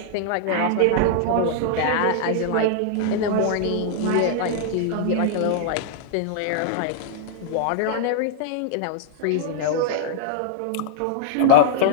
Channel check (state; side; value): different; both; correlation -0.01